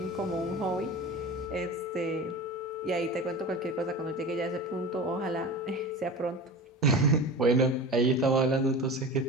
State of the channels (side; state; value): both; normal; correlation 0.32